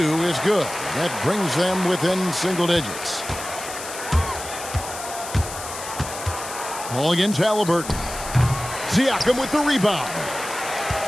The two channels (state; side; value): noise; left; hiss, 10 dB below the sound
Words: is good. That brings them within single digits. Ball against Halliburton. Siakam with the rebound.